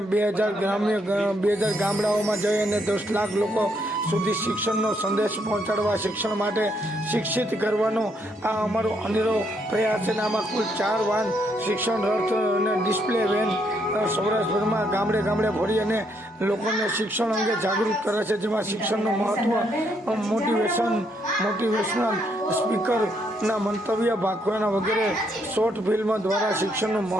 2000 ગામડાઓમાં જઈ અને 10 લાખ લોકો સુધી શિક્ષણનો સંદેશ પહોંચાડવા, શિક્ષણ માટે શિક્ષિત કરવાનો આ અમારો અનેરો પ્રયાસ છે. આમાં કુલ 4 વાન શિક્ષણ રથ અને ડિસ્પ્લે વેન સૌરાષ્ટ્રભરમાં ગામડે ફરી અને લોકોને શિક્ષણ અંગે જાગૃત કરે છે, જેમાં શિક્ષણનું મહત્વ, મોટિવેશનલ સ્પીકરના મંતવ્ય, ભાગવાના વગેરે શોર્ટ ફિલ્મ દ્વારા શિક્ષણનું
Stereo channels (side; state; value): both; normal; correlation 0.74